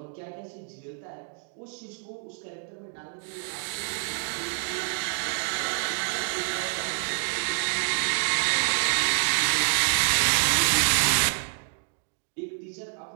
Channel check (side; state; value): left; silent; digital silence